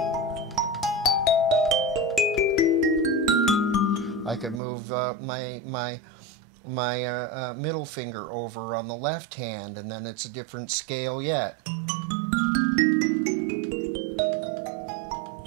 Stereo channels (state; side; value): drops out; left; at 4.6 s